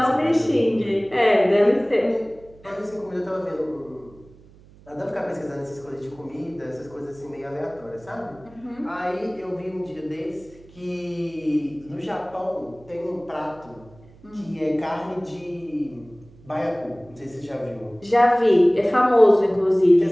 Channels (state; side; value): noise; right; hum, 24 dB below the sound